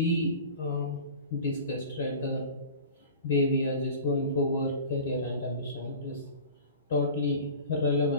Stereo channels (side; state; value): both; inverted; correlation -0.38